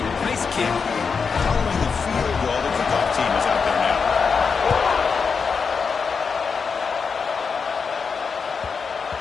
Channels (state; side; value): quieter; right; 5.5 dB